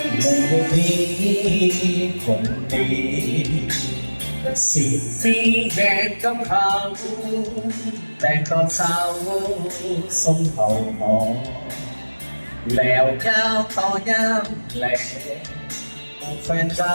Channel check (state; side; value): inverted; both; correlation -1.00